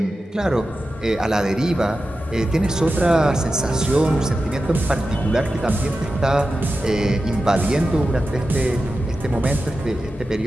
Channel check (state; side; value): normal; both; correlation 0.92